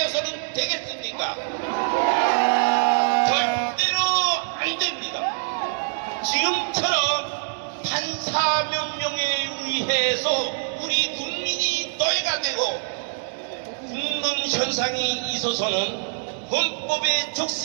되겠습니까? 절대로 안 됩니다. 지금처럼 판사 명령에 의해서 우리 국민이 노예가 되고 죽는 현상이 있어서는 헌법에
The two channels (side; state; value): left; silent; digital silence